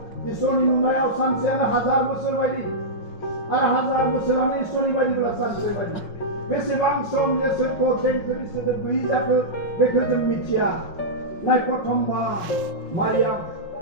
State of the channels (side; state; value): right; late; 5.5 ms